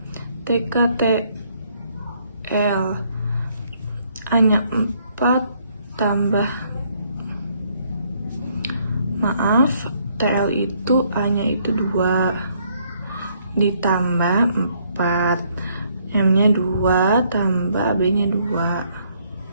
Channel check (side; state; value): both; inverted; correlation -0.68